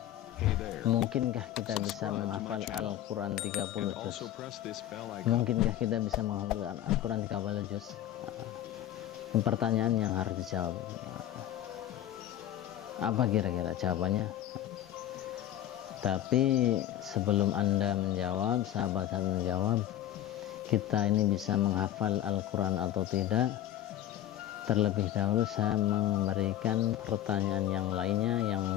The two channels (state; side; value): quieter; right; 12.2 dB